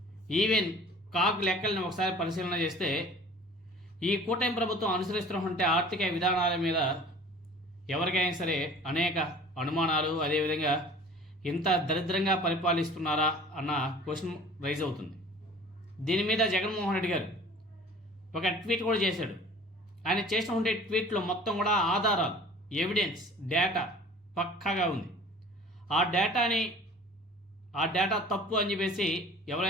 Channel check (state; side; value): normal; both; correlation 0.46